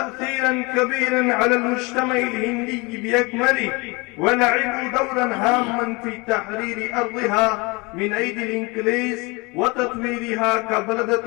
كبيرا على المجتمع الهندي بأكمله، ولعبوا دورا هاما في تحرير أرضها من أيدي الإنجليز وتطويرها كبلدة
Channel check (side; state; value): right; quieter; 26.8 dB